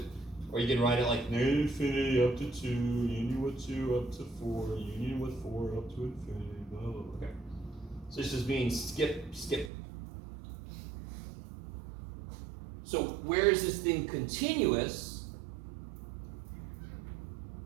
Or you can write it like negative infinity up to 2, union with 2 up to 4, union with 4 up to infinity, blah, blah, blah. Okay. So this just means skip. So where is this thing continuous?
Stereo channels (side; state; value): left; drops out; at 9.7 s